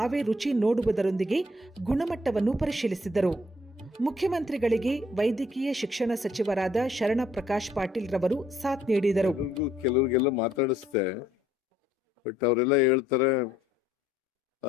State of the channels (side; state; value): both; normal; correlation 0.66